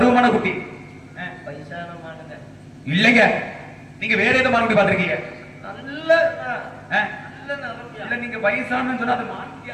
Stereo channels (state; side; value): identical; both; correlation 1.00